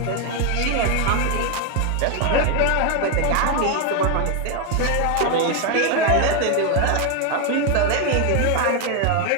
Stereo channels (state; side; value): different; both; correlation 0.01